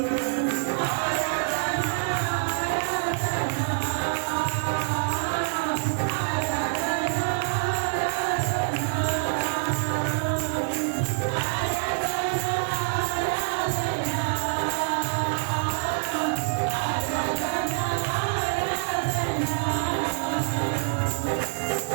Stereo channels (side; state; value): left; silent; digital silence